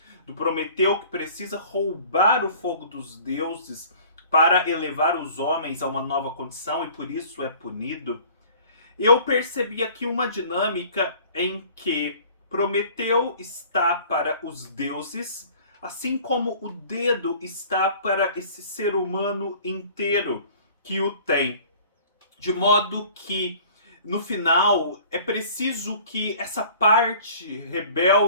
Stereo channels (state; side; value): inverted; both; correlation -0.49